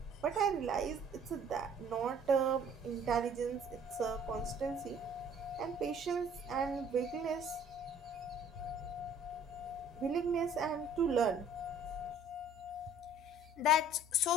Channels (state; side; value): normal; both; correlation 0.54